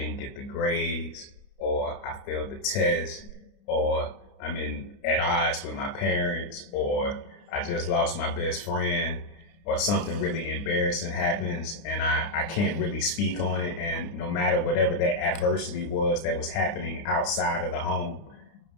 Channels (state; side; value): late; right; 29 ms